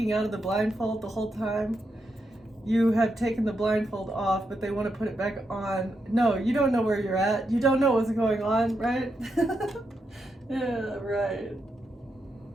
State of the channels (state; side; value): normal; both; correlation 0.83